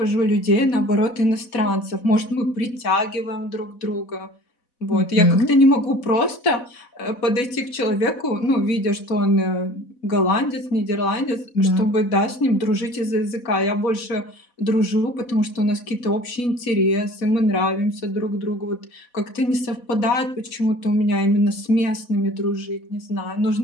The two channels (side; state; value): right; late; 4.1 ms